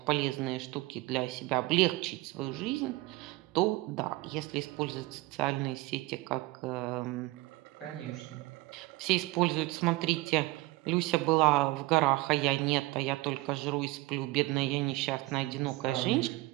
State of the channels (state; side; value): quieter; left; 20.6 dB